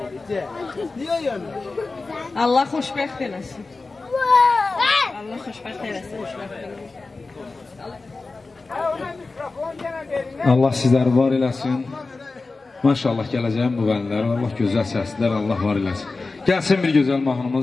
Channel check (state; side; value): quieter; right; 3.7 dB